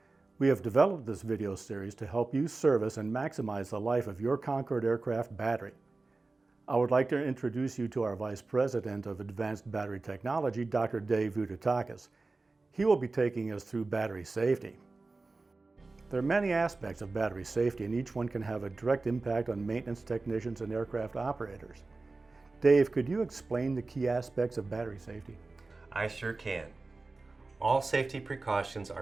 We have developed this video series to help you service and maximize the life of your Concorde aircraft battery. I would like to introduce you to our Vice President of Advanced Battery Technology, Dr. Dave Vudatakis. He will be taking us through battery safety. There are many aspects of battery safety, and each one can have a direct impact on maintenance technicians and aircraft operators. Dave, could you explain the key aspects of battery safety? I sure can. All safety precautions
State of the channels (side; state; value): left; quieter; 3.5 dB